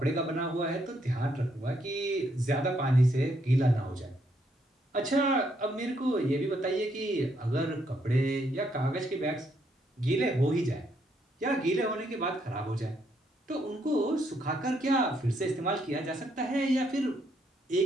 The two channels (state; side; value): normal; both; correlation 0.74